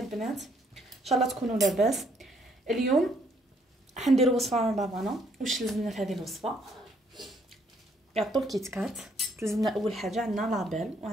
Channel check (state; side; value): normal; both; correlation 0.68